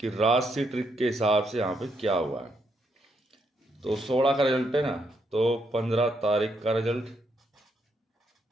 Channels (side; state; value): both; normal; correlation 0.77